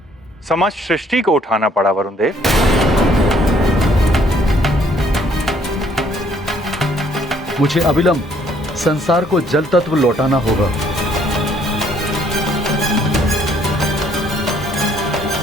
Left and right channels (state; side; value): normal; both; correlation 0.64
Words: समस्त सृष्टि को उठाना पड़ा वरुण देव। मुझे अविलंब संसार को जल तत्व लौटाना होगा।